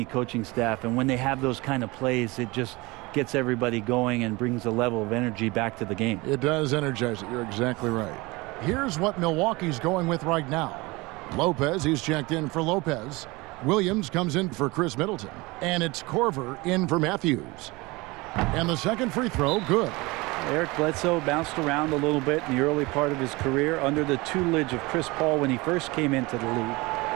coaching staff. And when they have those kind of plays, it just gets everybody going and brings a level of energy back to the game. It does energize it. You're exactly right. Here's what Milwaukee's going with right now. Lopez, he's checked in for Lopez. Williams comes in for Chris Middleton. And it's Korver in for Matthews. And the second free throw, good. Eric Bledsoe bounced around a little bit in the early part of his career under the tutelage of Chris Paul when he first came into the league.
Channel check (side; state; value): left; quieter; 23.4 dB